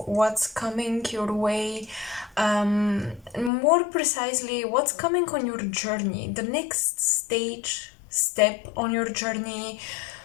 what's coming your way, more precisely what's coming on your journey, the next step on your journey.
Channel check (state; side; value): drops out; right; at 3.5 s